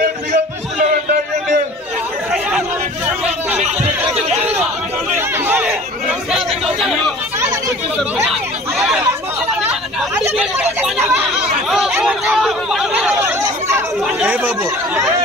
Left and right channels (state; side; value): normal; both; correlation 0.45